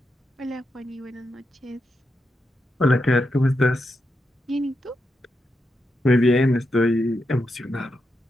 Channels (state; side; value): normal; both; correlation 0.85